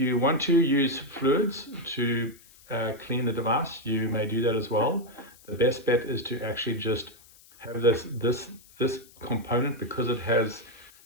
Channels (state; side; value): noise; left; hiss, 25 dB below the sound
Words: want to use fluids to clean the device, you may do that as well. The best bet is to actually just have this component, because it has